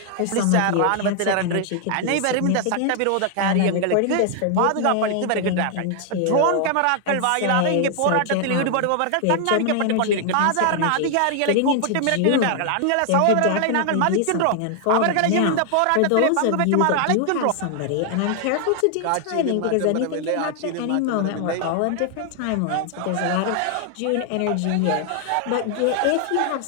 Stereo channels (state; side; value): different; both; correlation 0.00